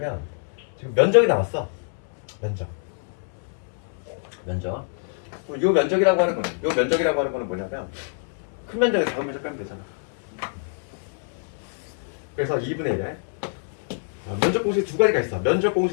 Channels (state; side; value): silent; right; 61 dB below the other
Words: 지금 면적이 나왔어. 면적. 요 면적이라고 하는 거는 뭐냐면 큰 면적에 작은 면적 빼면 되잖아. 그래서 2분의 1에 면적 공식 두 가지가 있어. 면적